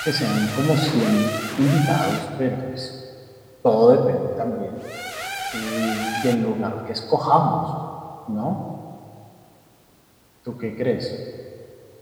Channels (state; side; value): identical; both; correlation 1.00